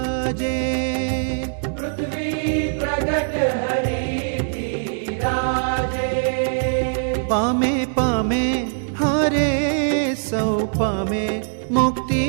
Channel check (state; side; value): silent; left; 64 dB below the other